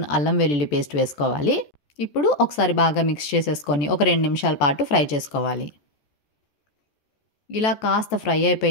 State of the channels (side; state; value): right; late; 14 ms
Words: అల్లం వెల్లుల్లి పేస్ట్ వేసుకోవాలి. ఇప్పుడు ఒకసారి బాగా మిక్స్ చేసేసుకొని ఒక 2 నిమిషాల పాటు ఫ్రై చేసుకోవాలి. ఇలా కాస్త ఫ్రై